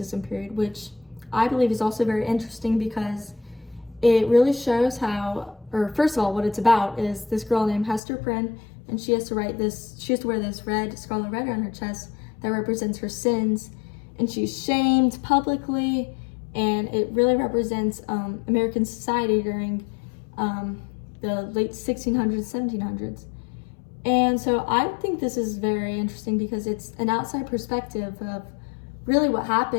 period, which I believe is also very interesting because it really shows how, or first of all, what it's about is this girl named Hester Prynne, and she has to wear this scarlet letter on her chest that represents her sins, and she's shamed publicly, and it really represents American society during the late 1600s, 1700s. And so I think this is very interesting because it's an outside perspective of really what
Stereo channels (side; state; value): right; drops out; at 8.0 s